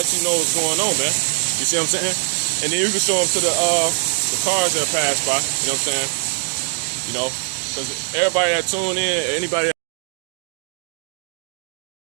you know what's going on, man. You see what I'm saying? And then you can show them to the cars that pass by. You know what I'm saying? You know, because everybody that tune in, anybody that,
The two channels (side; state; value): left; silent; digital silence